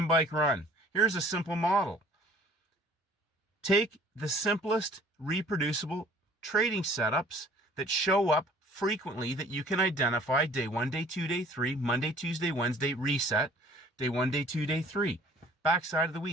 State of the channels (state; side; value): normal; both; correlation 0.53